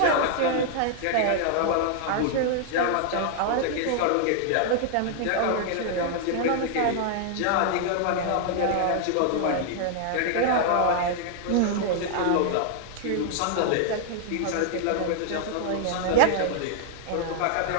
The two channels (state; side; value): different; both; correlation 0.00